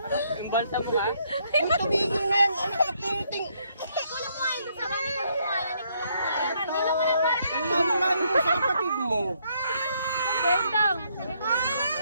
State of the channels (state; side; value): inverted; both; correlation -0.72